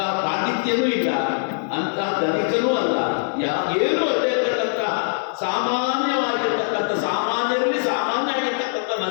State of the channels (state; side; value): silent; right; 55 dB below the other